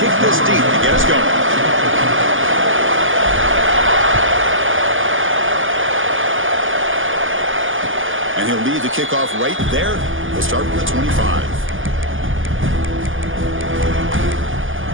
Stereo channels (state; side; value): late; left; 0.58 ms